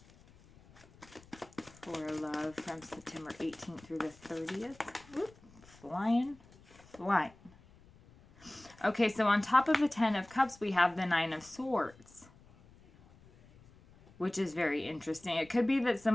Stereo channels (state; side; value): noise; left; rumble, 25 dB below the sound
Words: For love from September 18th through the 30th. Oop, flying. Okay, so on top of the 10 of Cups, we have the 9 of Swords, which is very interesting. It could be that